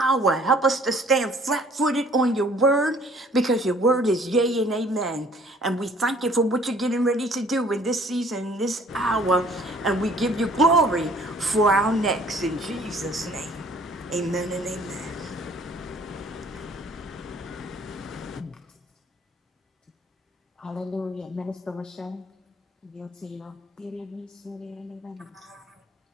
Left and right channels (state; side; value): normal; both; correlation 0.56